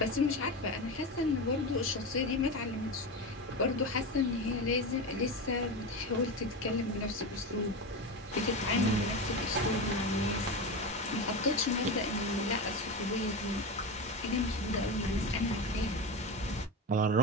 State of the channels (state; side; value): normal; both; correlation 0.21